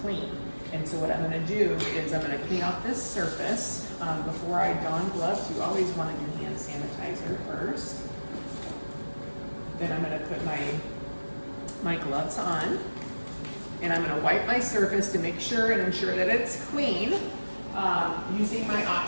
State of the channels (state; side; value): inverted; both; correlation -1.00